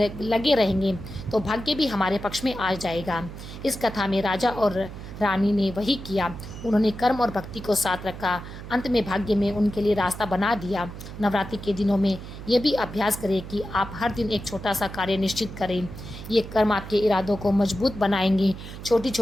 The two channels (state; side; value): noise; right; hum, 12 dB below the sound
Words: रहेंगे तो भाग्य भी हमारे पक्ष में आ जाएगा। इस कथा में राजा और रानी ने वही किया। उन्होंने कर्म और भक्ति को साथ रखा। अंत में भाग्य में उनके लिए रास्ता बना दिया। नवरात्रि के दिनों में ये भी अभ्यास करें कि आप हर दिन एक छोटा सा कार्य निश्चित करें। ये कर्म आपके इरादों को मजबूत बनाएंगे। छोटी